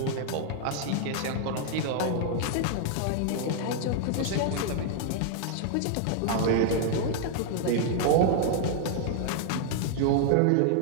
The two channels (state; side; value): different; both; correlation 0.00